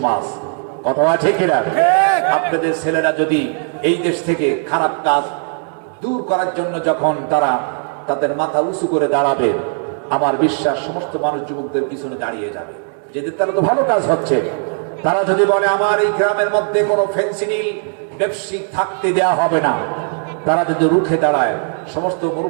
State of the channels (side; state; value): left; silent; 57 dB below the other